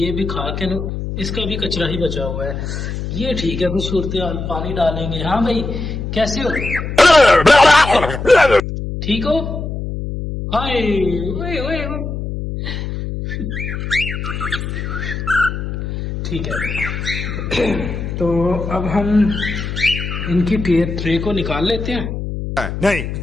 भी खा के ना, इसका भी कचरा ही बचा हुआ है। ये ठीक है, कुछ सूरत हाल पानी डालेंगे। हाँ भाई, कैसे हो? ठीक हो? हाय ओए ओए ओए। ठीक है, तो अब हम इनकी ट्रे को निकाल लेते हैं। नहीं।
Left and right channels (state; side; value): noise; left; hum, 5 dB below the sound